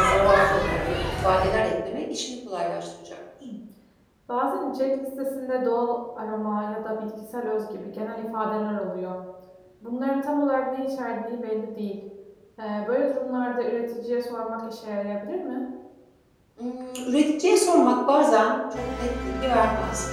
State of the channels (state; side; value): identical; both; correlation 1.00